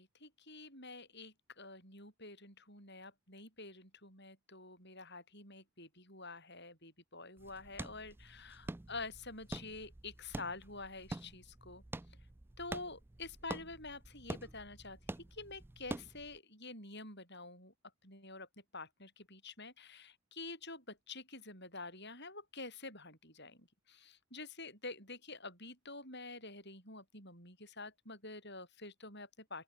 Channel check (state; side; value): normal; both; correlation 0.01